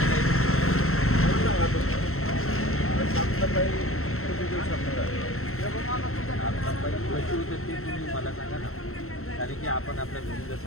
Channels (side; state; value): right; late; 0.63 ms